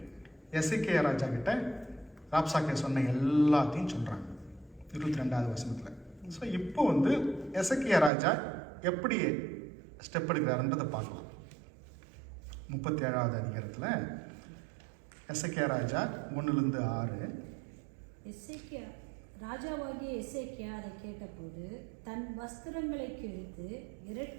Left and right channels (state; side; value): drops out; left; at 8.1 s